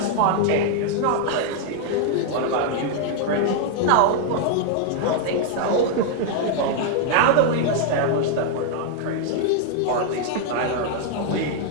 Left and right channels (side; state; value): both; different; correlation 0.00